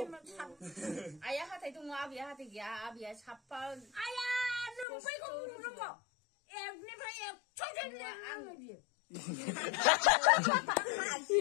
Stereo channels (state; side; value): drops out; right; at 4.9 s